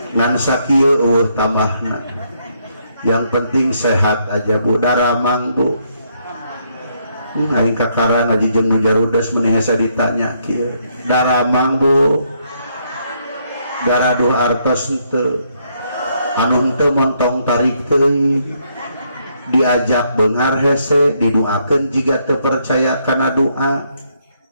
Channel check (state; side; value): inverted; both; correlation -0.73